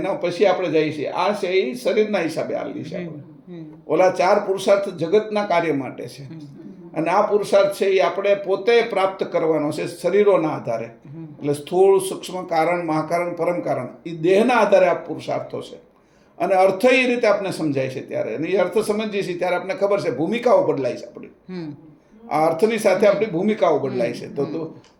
પછી આપણે જઈએ છીએ આ છે એ શરીરના હિસાબે આવેલી છે. આપણે ઓલા 4 પુરુષાર્થ જગતના કાર્ય માટે છે અને આ પુરુષાર્થ છે એ આપણે પોતે પ્રાપ્ત કરવાનો છે શરીરોના આધારે. એટલે સ્થૂળ, સૂક્ષ્મ, કારણ, મહાકારણ, પરમ કારણ એ દેહના આધારે આ પુરુષાર્થો છે. અને અર્થ એ રીતે આપણે સમજાય છે ત્યારે, અને એ અર્થ સમજીએ છીએ ત્યારે આપણે ખબર છે ભૂમિકાઓ બદલાય છે આપણી. આ અર્થની સાથે આપણી ભૂમિકાઓ બદલાય છે. તો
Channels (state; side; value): identical; both; correlation 1.00